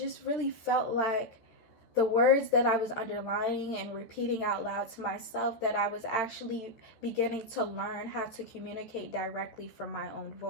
really felt like the words that I was underlining and repeating out loud to myself, that I was actually beginning to learn how to communicate directly from my own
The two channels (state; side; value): late; right; 14 ms